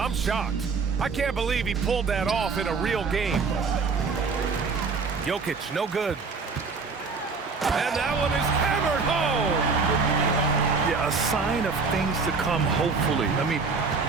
shocked. I can't believe he pulled that off in a real game. Jokic, no good. And that one is hammered home. Yeah, a sign of things to come, hopefully. I mean,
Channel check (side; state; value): left; quieter; 4.7 dB